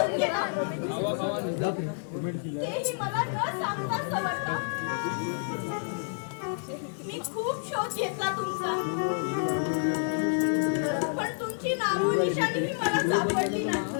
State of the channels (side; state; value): right; silent; digital silence